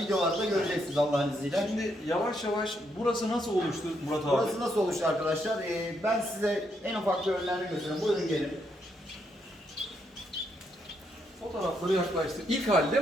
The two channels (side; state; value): both; normal; correlation 0.77